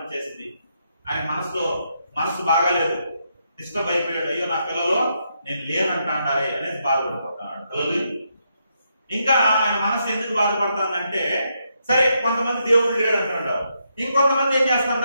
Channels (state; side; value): inverted; both; correlation -0.79